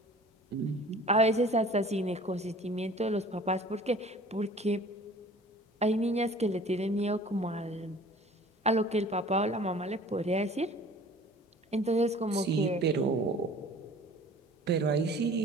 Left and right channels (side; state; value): both; normal; correlation 0.47